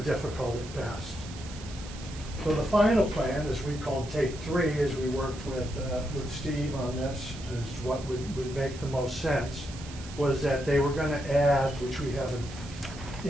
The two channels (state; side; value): noise; right; hiss, 16 dB below the sound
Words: at best. So the final plan, as we called take 3, as we worked with Steve on this, is what would make the most sense, was that they were going to add, which we have